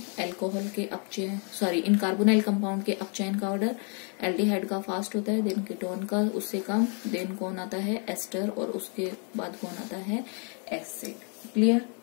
अल्कोहल के अपचयन इन कार्बोनाइल कंपाउंड के अपचयन का ऑर्डर, एल्डिहाइड का फास्ट होता है, देन कीटोन का उससे कम, देन कौन आता है एस्टर, और उसके बाद कौन आता है एसिड। क्लियर।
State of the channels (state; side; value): quieter; right; 39.0 dB